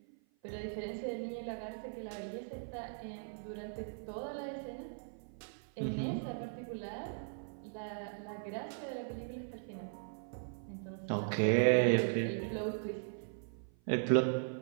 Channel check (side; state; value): left; silent; 52 dB below the other